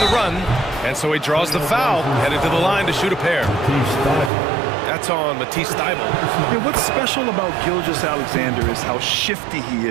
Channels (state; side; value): drops out; left; at 4.3 s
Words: run, and so he draws the foul, headed to the line to shoot a pair. That's on Matisse Thibault. Yeah, what's special about Gilgeous-Alexander is how shifty he